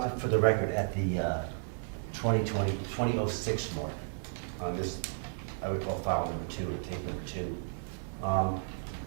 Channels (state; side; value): silent; left; digital silence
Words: it for the record at the 2006 mark. This, I would call file number 2, or case number 2.